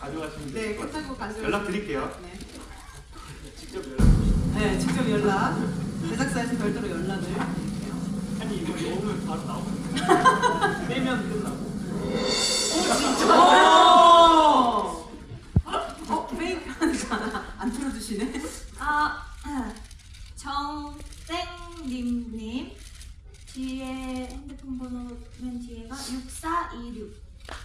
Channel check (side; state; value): both; identical; correlation 1.00